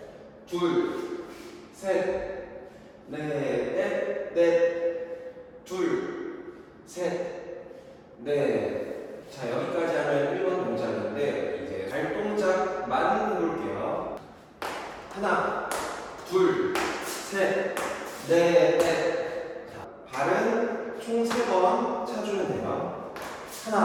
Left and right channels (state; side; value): identical; both; correlation 1.00